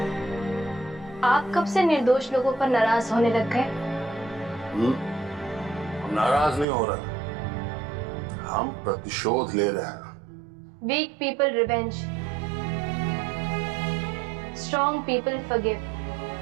आप कब से निर्दोष लोगों पर नाराज होने लग गए? हम नाराज नहीं हो रहे, हम प्रतिशोध ले रहे हैं। Weak people revenge, strong people forgive.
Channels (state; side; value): drops out; left; at 6.7 s